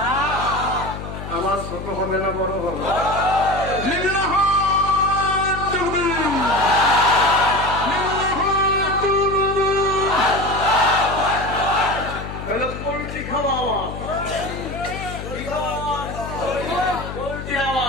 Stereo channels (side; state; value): left; noise; hum, 9 dB below the sound